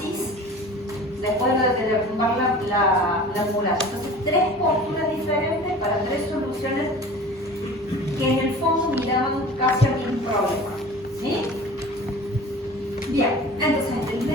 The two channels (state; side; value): normal; both; correlation 0.40